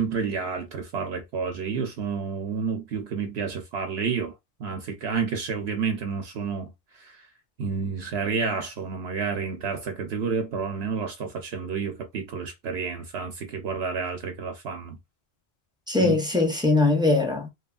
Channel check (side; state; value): both; normal; correlation 0.26